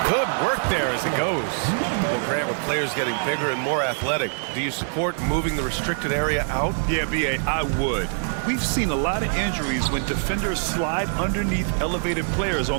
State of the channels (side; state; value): left; silent; digital silence